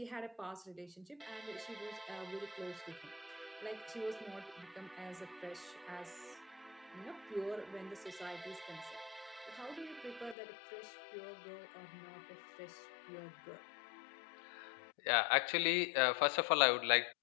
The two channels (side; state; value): right; drops out; at 10.4 s